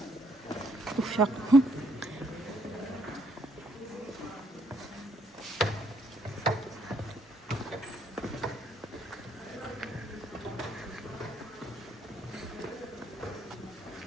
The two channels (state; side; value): normal; both; correlation 0.69